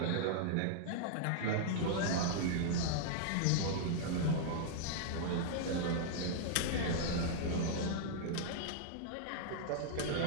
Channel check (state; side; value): different; both; correlation -0.01